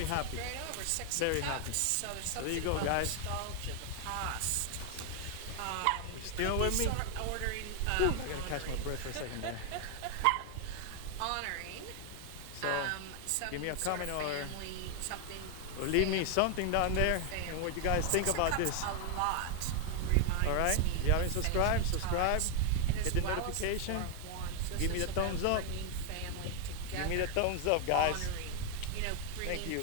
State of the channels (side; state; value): both; different; correlation 0.00